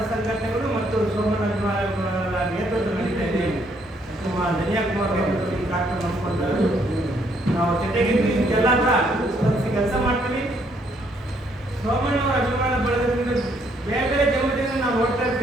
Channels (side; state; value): both; normal; correlation 0.69